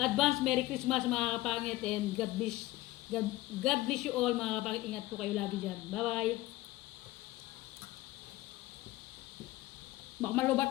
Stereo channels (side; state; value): right; quieter; 17.9 dB